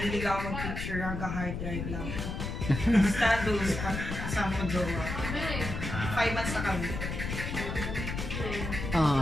ako mag-picture, hanggang hard drive lang. Status, kasama ko jowa. 5 months na kami.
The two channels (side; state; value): left; noise; rumble, 5 dB below the sound